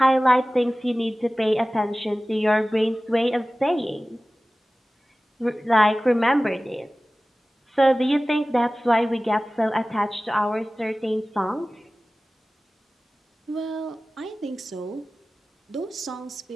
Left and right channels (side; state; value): both; normal; correlation 0.97